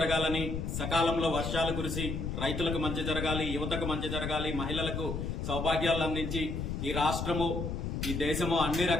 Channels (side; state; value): left; noise; rumble, 3 dB below the sound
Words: సకాలంలో వర్షాలు కురిసి రైతులకు మంచి జరగాలి, యువతకు మంచి జరగాలి, మహిళలకు సౌభాగ్యాలు అందించి ఈ రాష్ట్రము ఈ దేశము అన్ని